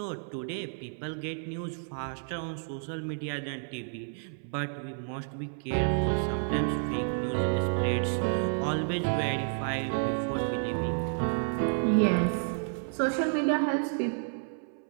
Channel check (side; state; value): left; silent; 57 dB below the other